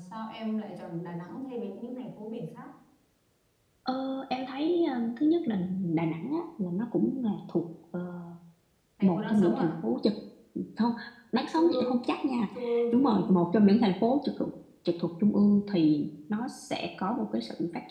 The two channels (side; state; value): both; identical; correlation 1.00